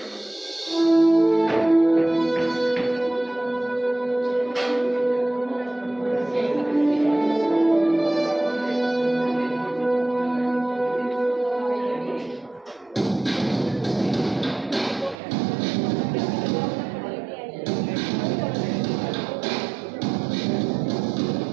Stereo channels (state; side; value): drops out; left; at 15.2 s